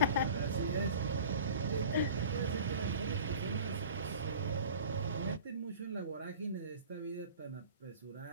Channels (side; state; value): both; inverted; correlation -0.42